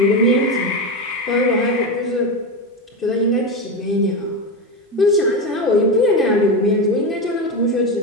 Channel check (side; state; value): both; normal; correlation 0.16